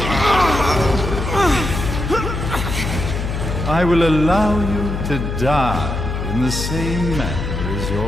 I will allow you to die in the same manner as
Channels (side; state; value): left; noise; hum, 3 dB below the sound